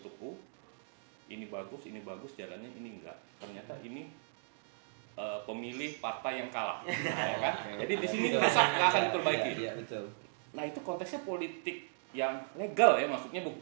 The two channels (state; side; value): silent; left; digital silence